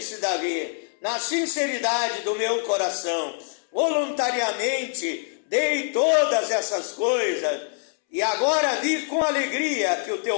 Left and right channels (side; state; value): right; silent; 62 dB below the other